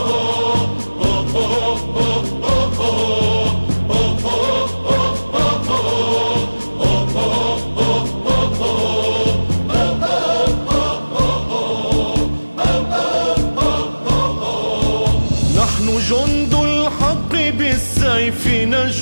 نحن جند الحق بالسيف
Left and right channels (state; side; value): inverted; both; correlation -1.00